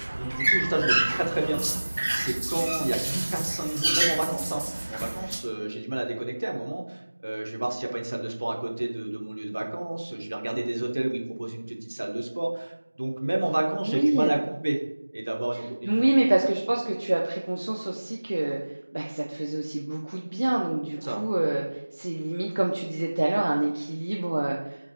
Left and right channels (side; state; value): both; inverted; correlation -1.00